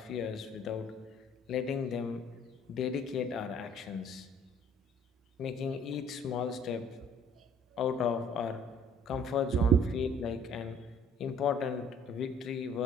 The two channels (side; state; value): both; normal; correlation 0.56